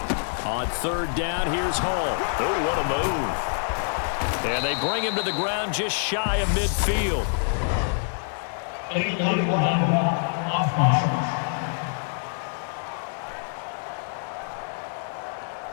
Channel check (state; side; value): silent; right; digital silence